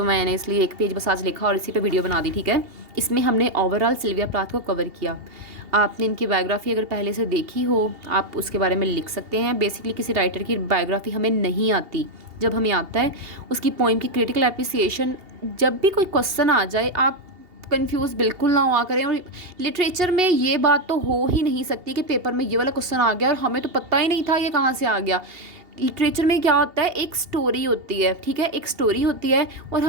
मैंने इसलिए एक पेज बस आज लिखा और इसी पे वीडियो बना दी, ठीक है। इसमें हमने ओवरऑल सिल्विया प्लाथ को कवर किया। आपने इनकी बायोग्राफी अगर पहले से देखी हो, आप उसके बारे में लिख सकते हैं। बेसिकली किसी राइटर की बायोग्राफी हमें नहीं आती, जब हमें आता है उसकी पोइम की क्रिटिकल एप्रिसिएशन। जब भी कोई क्वेश्चन आ जाए, आप कंफ्यूज बिल्कुल ना हुआ करें। और लिटरेचर में ये बात तो हो ही नहीं सकती कि पेपर में ये वाला क्वेश्चन आ गया और हमें तो पता ही नहीं था ये कहाँ से आ गया। लिटरेचर में क्या होता है, एक स्टोरी होती है, ठीक है, एक स्टोरी होती है और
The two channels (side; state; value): left; late; 2.7 ms